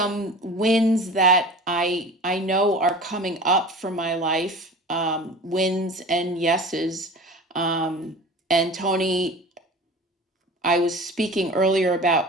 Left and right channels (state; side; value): normal; both; correlation 0.38